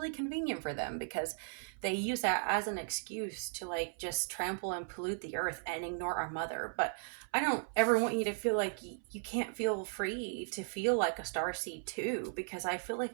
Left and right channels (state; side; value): silent; left; 53 dB below the other